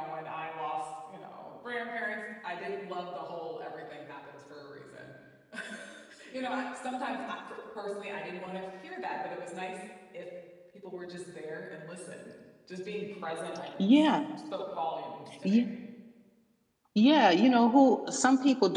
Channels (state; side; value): identical; both; correlation 1.00